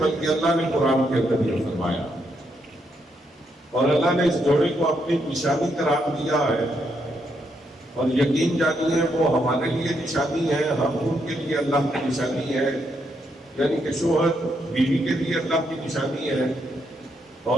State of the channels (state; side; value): normal; both; correlation 0.78